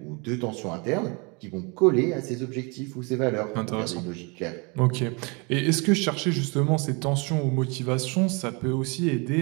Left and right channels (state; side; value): quieter; left; 30.8 dB